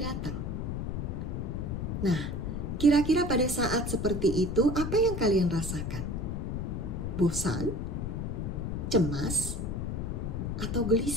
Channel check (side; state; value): left; noise; rumble, 3 dB below the sound